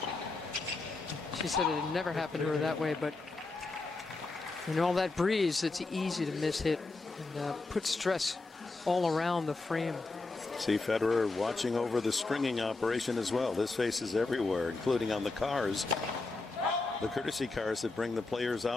She said it had never happened to her that way, but in all that breeze, it's easy to miss hit and put stress all around the frame. See Federer watching over the stringing operation as well. This face is everywhere, including on the cars. The courtesy cars that bring the players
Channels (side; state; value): right; quieter; 3.5 dB